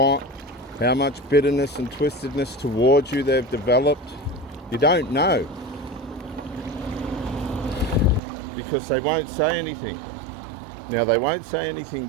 how much bitterness and twistedness towards you they've developed. You don't know, because they won't say anything. Now, they won't say anything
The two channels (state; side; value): drops out; left; at 8.2 s